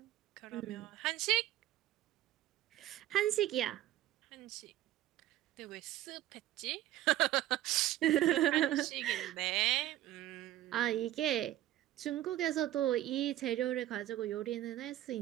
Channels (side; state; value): left; quieter; 14.1 dB